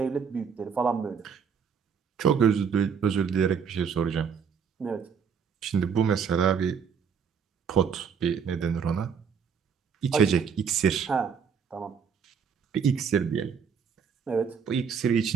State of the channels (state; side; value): quieter; left; 6.7 dB